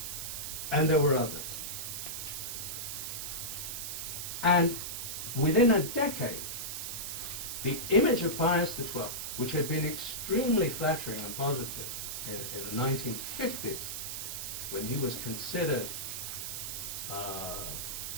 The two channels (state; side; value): noise; right; hiss, 5 dB below the sound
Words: And there were others. And within a decade, the image of Pius XII, which had been extremely flattering and positive in the 1950s, when he was considered,